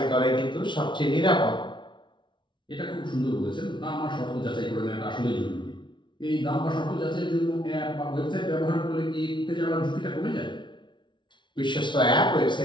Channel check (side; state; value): right; late; 0.23 ms